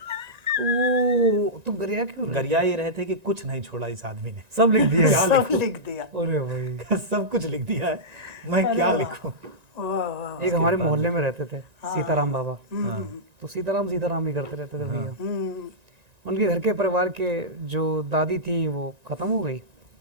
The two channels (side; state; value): left; late; 1.9 ms